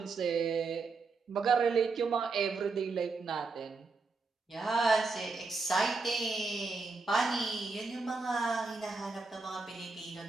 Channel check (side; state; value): left; quieter; 4.1 dB